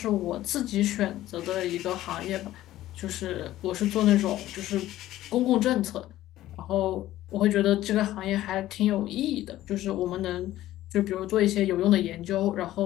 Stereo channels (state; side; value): quieter; right; 14.5 dB